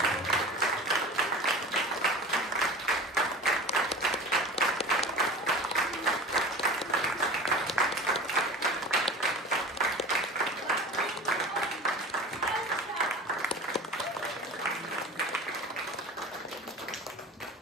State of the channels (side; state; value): both; normal; correlation 0.35